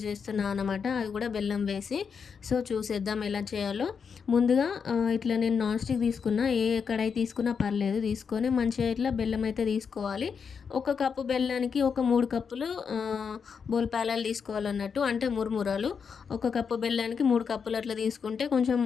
చేస్తున్నాను అనమాట. అది కూడా బెల్లం వేసి. సో చూసేద్దాం ఎలా చేయాలో. ముందుగా ఇట్లా నేను నాన్ స్టిక్ తీసుకున్నా, ఏ కడాయి తీసుకున్నా పర్లేదు, తీసుకొని మంచిగా ఇట్లా బెల్లం అయితే తీసుకోవాలి. ఒక కప్పు బెల్లానికి ఒక 3 కప్పులు బోల్పాలాలు తీసుకోవాలన్నట్టు, అంటే మురుమురాలు. ఒక కప్పు బెల్లానికి 3 కప్పులు అట్లా తీసుకుంటే కొంచెం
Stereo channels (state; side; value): quieter; right; 6.2 dB